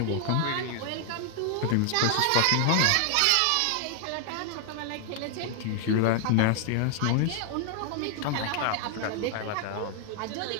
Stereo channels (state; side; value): different; both; correlation 0.00